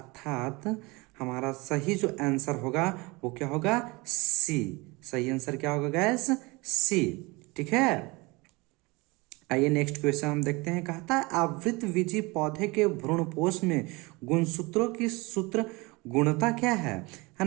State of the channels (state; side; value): quieter; left; 24.7 dB